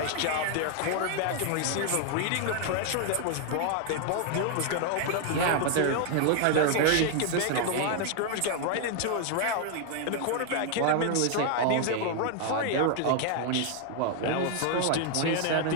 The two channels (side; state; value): both; different; correlation 0.00